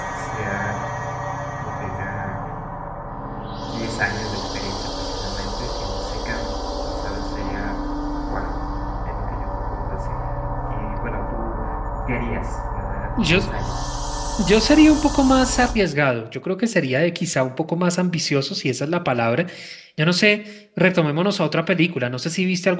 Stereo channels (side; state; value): both; identical; correlation 1.00